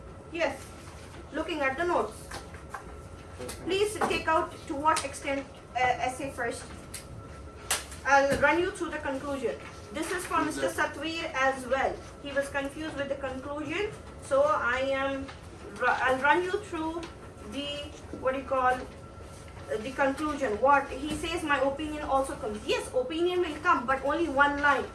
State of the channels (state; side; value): identical; both; correlation 1.00